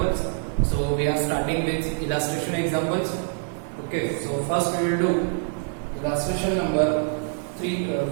So we are starting with illustration examples. Okay, so first we will do illustration number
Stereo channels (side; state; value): left; silent; digital silence